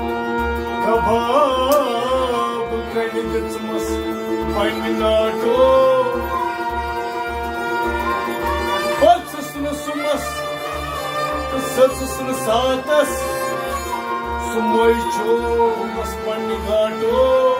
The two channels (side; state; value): both; identical; correlation 1.00